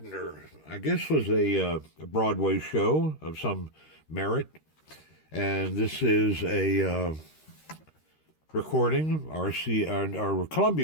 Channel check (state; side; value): late; right; 13 ms